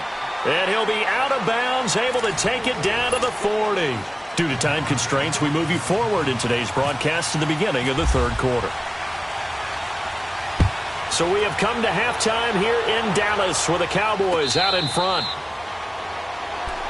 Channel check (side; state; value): both; identical; correlation 1.00